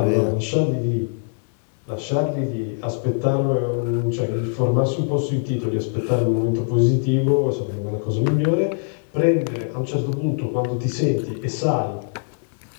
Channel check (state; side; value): silent; right; digital silence